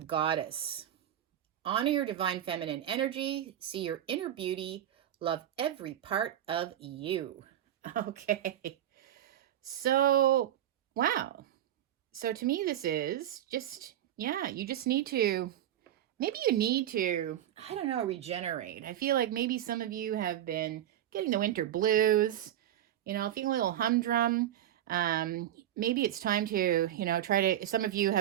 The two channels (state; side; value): quieter; left; 11.7 dB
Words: Goddess. Honor your divine feminine energy. See your inner beauty. Love every part of you. Okay. So, wow. So to me, this is just, you just need to, maybe you need to, I don't know, regenerate. I feel like maybe some of you have been getting the winter blues, feeling a little humdrum. Maybe it's time to, some of you